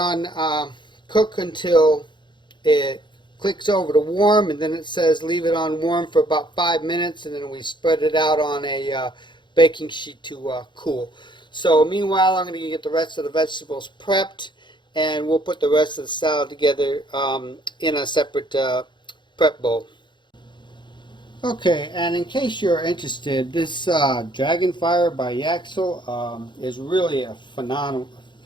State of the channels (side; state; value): right; late; 0.23 ms